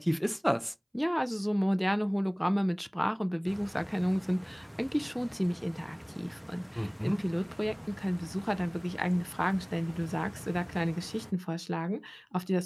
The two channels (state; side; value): identical; both; correlation 1.00